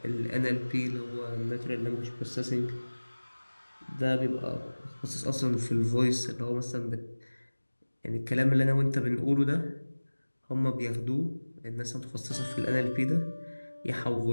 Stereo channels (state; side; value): inverted; both; correlation -1.00